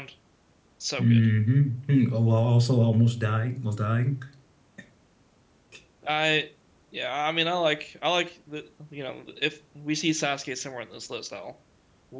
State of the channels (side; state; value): both; identical; correlation 1.00